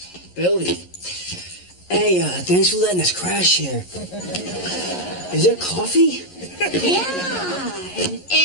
Billy. Hey, thanks for letting us crash here. Is there coffee? Yeah, and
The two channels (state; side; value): late; right; 11 ms